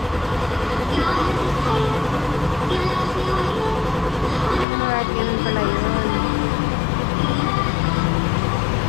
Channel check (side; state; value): right; drops out; at 4.7 s